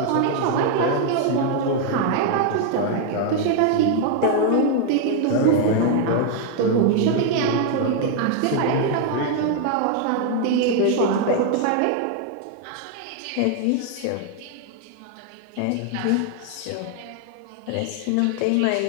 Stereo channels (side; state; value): both; different; correlation 0.00